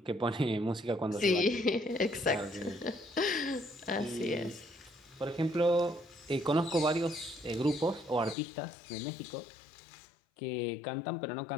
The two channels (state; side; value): drops out; right; at 8.3 s